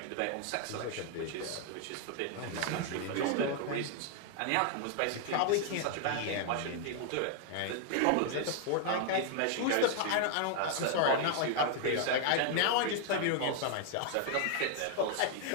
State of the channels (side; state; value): both; different; correlation 0.00